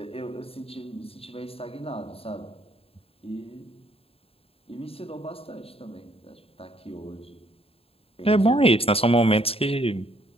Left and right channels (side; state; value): right; late; 0.28 ms